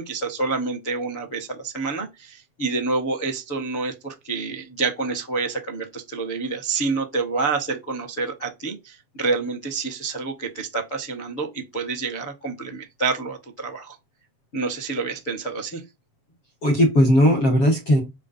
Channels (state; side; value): late; right; 7.5 ms